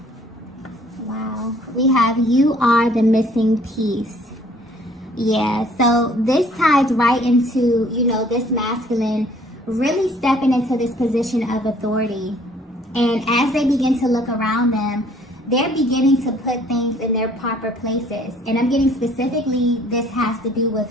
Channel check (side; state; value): both; normal; correlation 0.58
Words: wow, we have you are the missing piece. Yeah, so this ties right into, you know, this masculine really stepping into this position of authority. And as they begin to look around them, they're beginning to put things in their proper places. And I'm getting specifically, this has to do